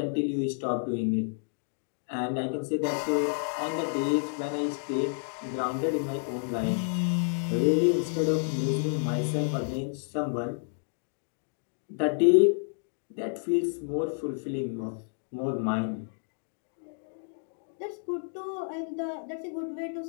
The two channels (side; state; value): right; silent; digital silence